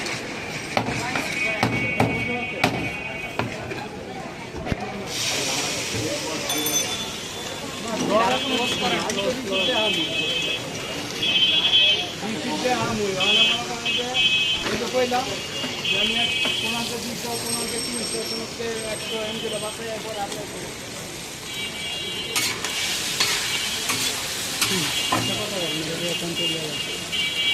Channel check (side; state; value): both; identical; correlation 1.00